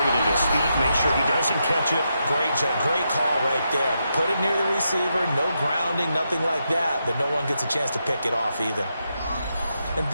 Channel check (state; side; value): inverted; both; correlation -0.84